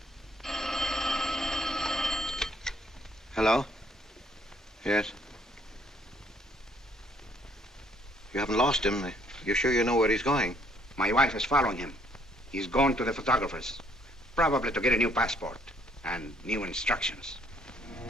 Hello? Yes? You haven't lost him. You're sure you know where he's going? My wife is following him. He's gone to the photographer's, probably to get a new passport and new instructions.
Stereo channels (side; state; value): both; normal; correlation 0.66